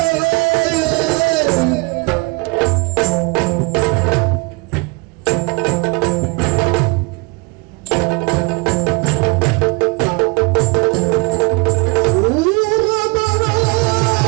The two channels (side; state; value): left; quieter; 29.0 dB